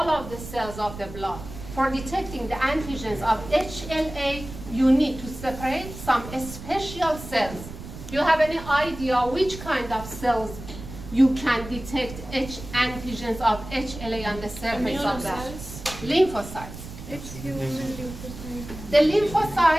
of the cells of the blood. For detecting the antigens of HLA, you need to separate some special cells. Do you have any idea which kind of cells you can detect antigens of HLA on the surface of that? Lymphocytes. It's human lymphocytes. The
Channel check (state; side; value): noise; right; rumble, 12 dB below the sound